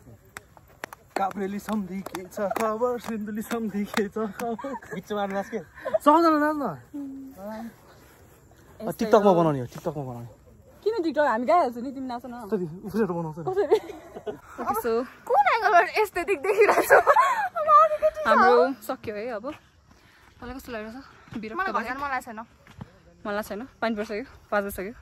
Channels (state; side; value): identical; both; correlation 1.00